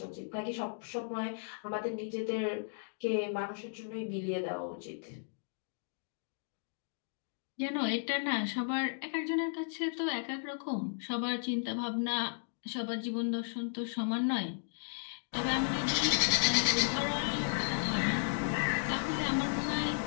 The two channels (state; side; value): silent; right; digital silence